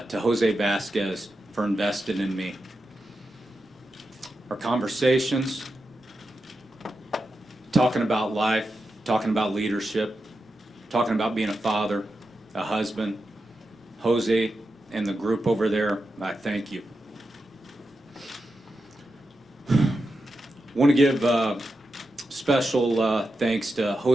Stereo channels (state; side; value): normal; both; correlation 0.89